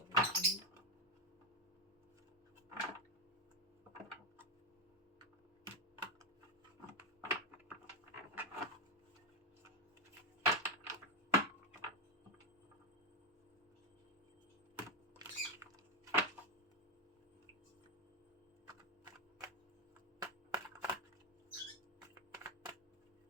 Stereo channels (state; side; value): normal; both; correlation 0.07